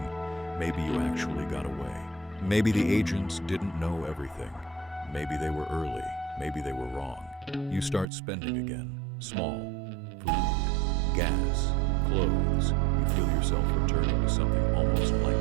maybe you actually got away. Maybe the agents didn't know everything. Maybe they were early. Maybe they were wrong. You start spending again. Small. Food, gas, clothes. You feel yourself returning to something almost like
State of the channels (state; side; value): drops out; left; at 8.1 s